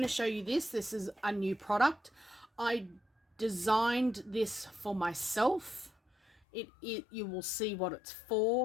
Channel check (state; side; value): drops out; right; at 6.4 s